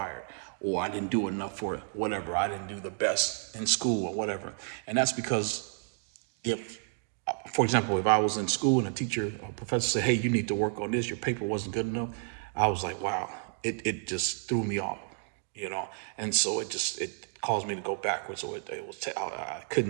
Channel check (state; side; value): silent; left; 57 dB below the other